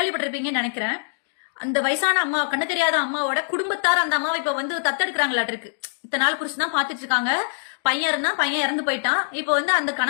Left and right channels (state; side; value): silent; right; digital silence